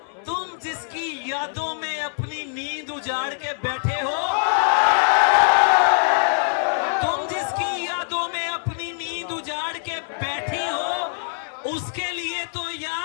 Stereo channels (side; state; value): right; silent; 63 dB below the other